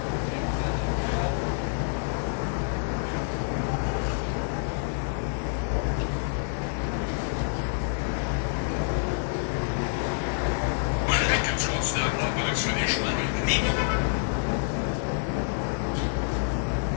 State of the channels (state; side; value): silent; right; 60 dB below the other